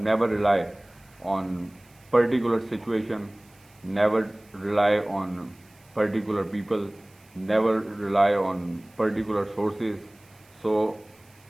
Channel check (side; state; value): right; noise; hiss, 30 dB below the sound